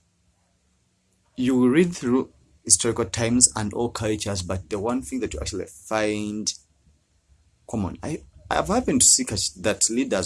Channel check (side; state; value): both; identical; correlation 1.00